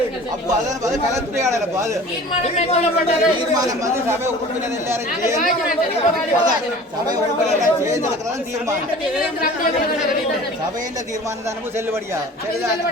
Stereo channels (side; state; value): both; normal; correlation 0.43